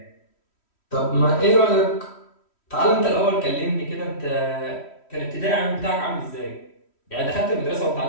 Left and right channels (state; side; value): late; right; 3.1 ms